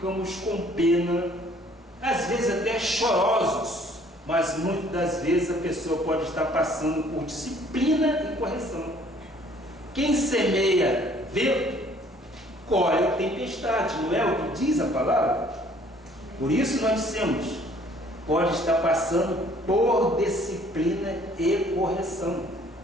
com pena, às vezes até chorosos, mas muitas das vezes a pessoa pode estar passando por disciplina e correção. Quem semeia vento, colhe tempestade, não é o que diz a palavra? Por isso nós dissemos, pode estar passando por disciplina e correção.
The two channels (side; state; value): both; normal; correlation 0.58